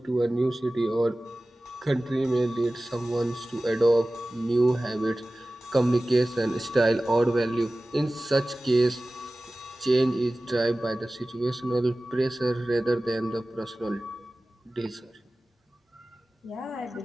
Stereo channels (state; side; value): normal; both; correlation 0.97